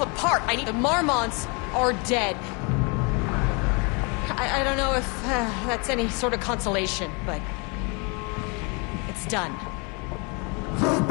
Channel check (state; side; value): quieter; right; 32.0 dB